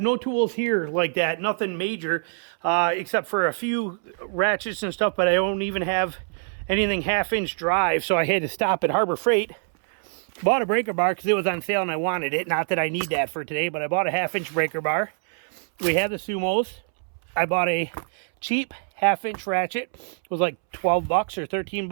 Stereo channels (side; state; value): left; silent; 62 dB below the other